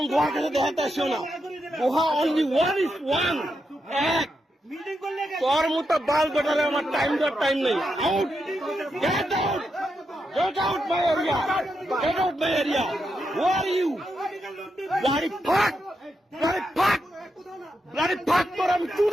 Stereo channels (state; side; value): normal; both; correlation 0.84